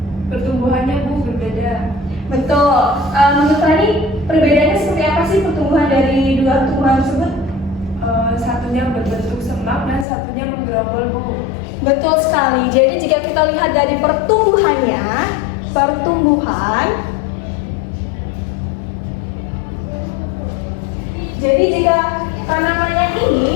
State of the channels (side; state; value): right; drops out; at 10.1 s